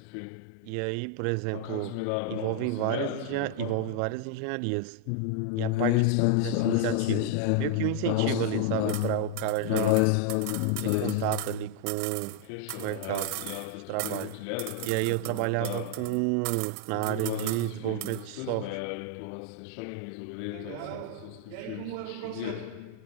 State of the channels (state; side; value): different; both; correlation 0.00